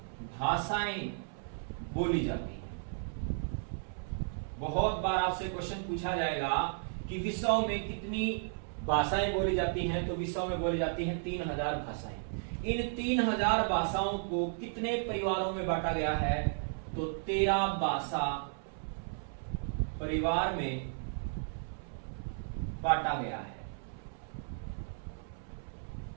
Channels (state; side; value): silent; left; 55 dB below the other